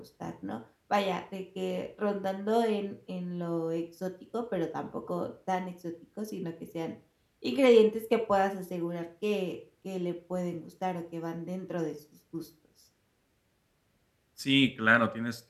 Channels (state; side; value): identical; both; correlation 1.00